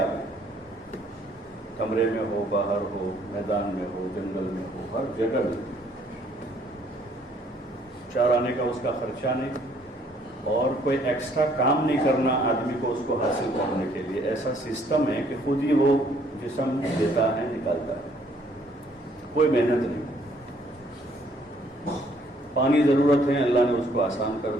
ہے، کمرے میں ہو، باہر ہو، میدان میں ہو، جنگل میں ہو، ہر جگہ ملتی ہے۔ چار آنے کا اس کا خرچہ نہیں اور کوئی ایکسٹرا کام نہیں کرنا آدمی کو اس کو حاصل کرنے کے لیے، ایسا سسٹم ہے کہ خود ہی وہ جسم دیتا ہے، نکالتا ہے، کوئی محنت نہیں۔ پانی ضرورت ہے، اللہ نے اس کو آسان کر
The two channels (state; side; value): normal; both; correlation 0.64